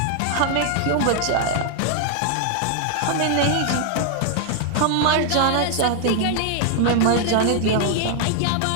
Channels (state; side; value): different; both; correlation 0.00